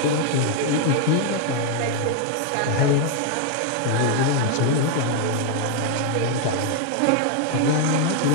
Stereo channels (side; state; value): both; different; correlation 0.00